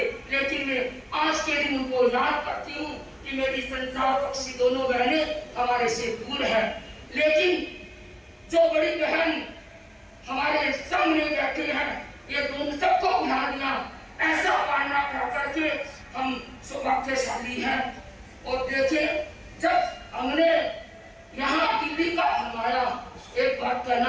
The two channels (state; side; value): identical; both; correlation 1.00